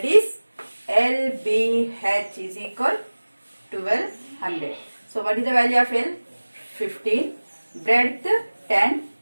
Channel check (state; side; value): inverted; both; correlation -1.00